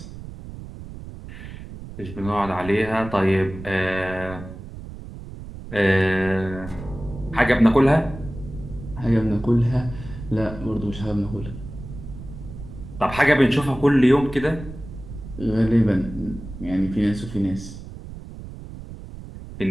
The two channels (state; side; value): noise; right; rumble, 12 dB below the sound